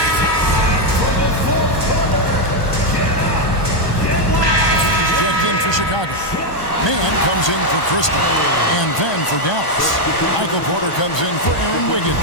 He's checked in for Chicago. Mann comes in for Christie. And then for Dallas. Michael Porter comes in for Aaron Wiggins.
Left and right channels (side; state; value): right; late; 1.3 ms